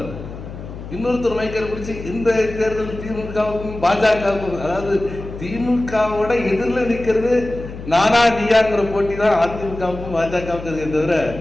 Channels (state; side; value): noise; left; hum, 12 dB below the sound